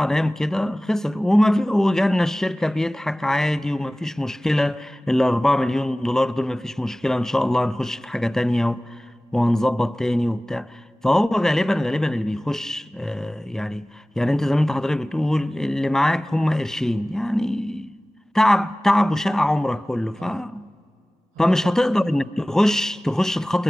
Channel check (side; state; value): both; normal; correlation 0.98